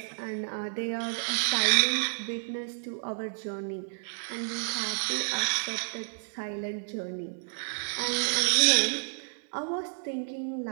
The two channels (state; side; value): silent; left; digital silence